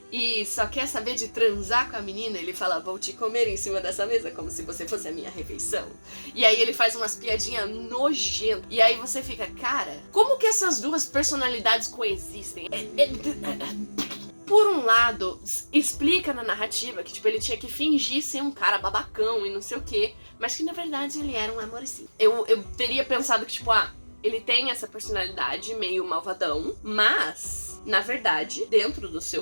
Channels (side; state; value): both; inverted; correlation -1.00